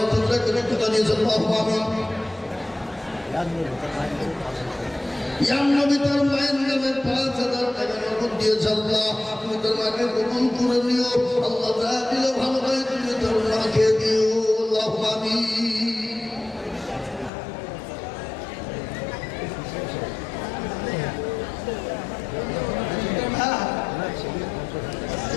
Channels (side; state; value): right; drops out; at 17.3 s